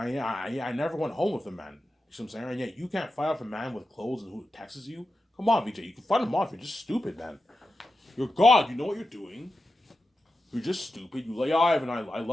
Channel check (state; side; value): normal; both; correlation 0.91